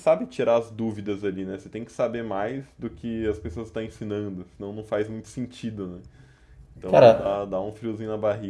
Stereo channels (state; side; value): identical; both; correlation 1.00